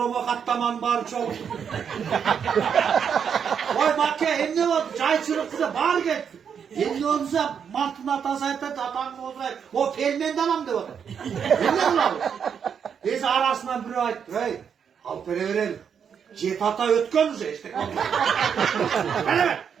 katlaman var çok. Vay makke hem ne oldu? Çay çırıklıza bağır get. Hem ne olursa mantının atasaydı atan olsaydı o pelmenden alam diyordu. Hem ne oldu? Neyse arasından biri ayıttı. Hey al pere verelim. Cet ata ötkönüze işte. Hele be.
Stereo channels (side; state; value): left; quieter; 7.4 dB